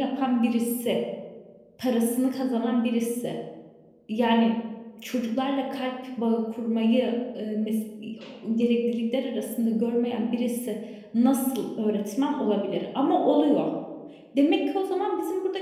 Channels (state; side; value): identical; both; correlation 1.00